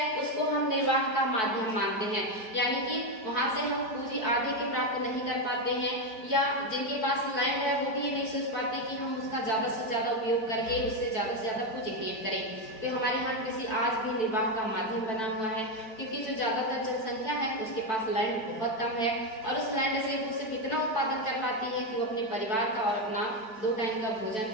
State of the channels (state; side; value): late; right; 4.6 ms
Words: उसको हम निर्वाह का माध्यम मानते हैं, यानी कि वहां से हम पूंजी आधे के प्राप्त नहीं कर पाते हैं, या जिनके पास लैंड है वो भी ये नहीं सोच पाते कि हम उसका ज्यादा से ज्यादा उपयोग करके उससे ज्यादा पूंजी क्रिएट करें। तो हमारे यहाँ कृषि आज भी निर्वाह का माध्यम बना हुआ है, क्योंकि जो ज्यादातर जनसंख्या है उसके पास लैंड बहुत कम है और उस लैंड से वो सिर्फ इतना उत्पादन कर पाती है कि वो अपने परिवार का और अपना 2 टाइम का